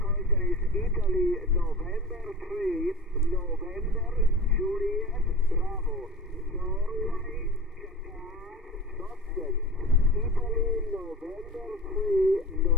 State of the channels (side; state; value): both; normal; correlation 0.34